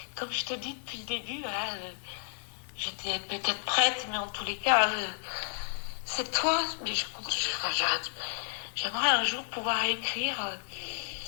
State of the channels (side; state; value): right; silent; 56 dB below the other